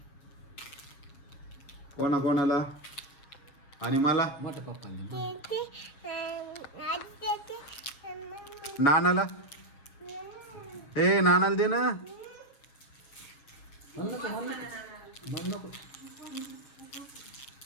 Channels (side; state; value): right; late; 7.2 ms